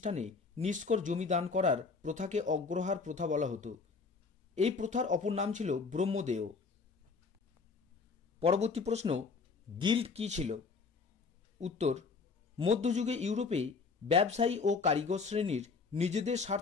নিষ্কর জমি দান করার প্রথাকে অগ্রহার প্রথা বলা হতো। এই প্রথার অপর নাম ছিল ব্রহ্মদেয়। পরবর্তী প্রশ্ন, গিল্ড কী ছিল? উত্তর, মধ্যযুগে ইউরোপে ব্যবসায়ী ও কারিগর শ্রেণীর নিজেদের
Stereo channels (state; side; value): quieter; right; 4.8 dB